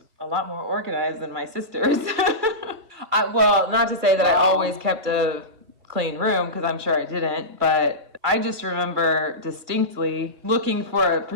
a lot more organized than my sisters. Well, not to say that I always kept a clean room, because I'm sure I didn't, but I just remember distinctly looking for a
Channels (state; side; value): late; left; 2.4 ms